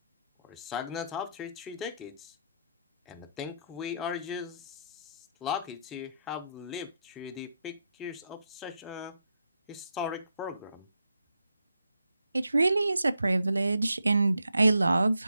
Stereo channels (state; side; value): inverted; both; correlation -0.81